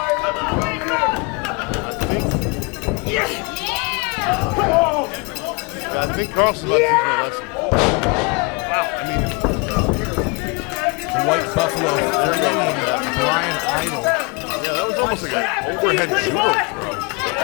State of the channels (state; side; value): quieter; right; 30.4 dB